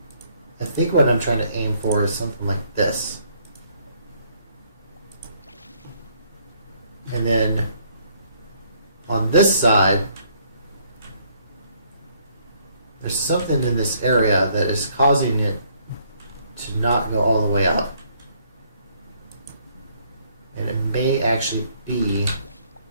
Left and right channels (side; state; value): both; inverted; correlation -0.66